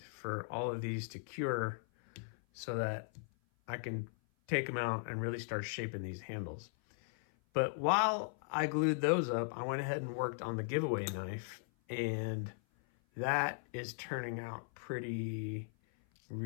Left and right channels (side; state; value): right; silent; 53 dB below the other